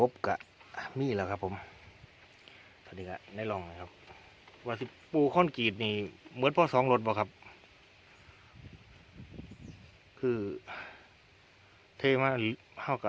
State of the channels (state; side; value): identical; both; correlation 1.00